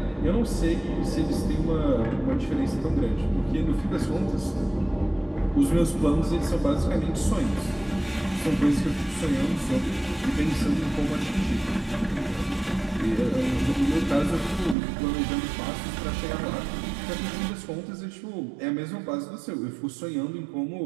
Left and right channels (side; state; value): left; drops out; at 14.8 s